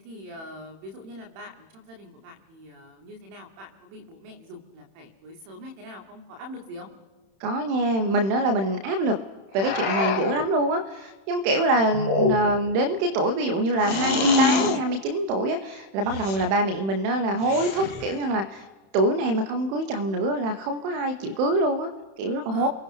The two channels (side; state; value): left; late; 31 ms